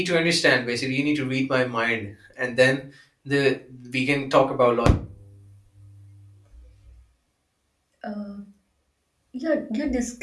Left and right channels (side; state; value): both; identical; correlation 1.00